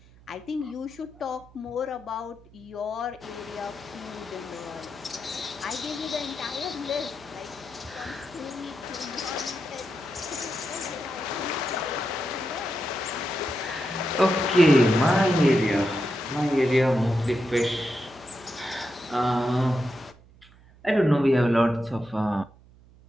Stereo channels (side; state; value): right; noise; hum, 25 dB below the sound